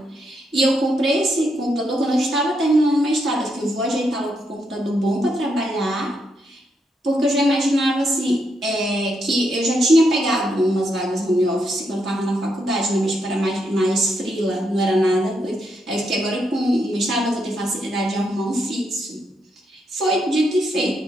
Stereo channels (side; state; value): both; normal; correlation 0.79